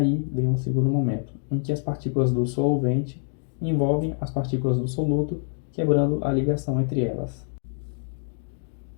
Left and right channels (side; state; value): right; silent; 60 dB below the other